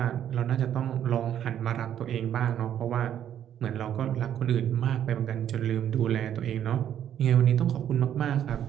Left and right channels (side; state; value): left; quieter; 10.2 dB